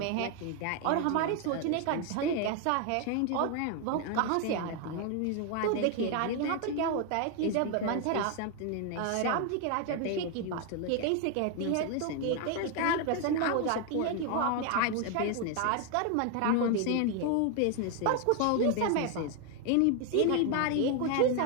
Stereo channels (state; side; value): different; both; correlation 0.01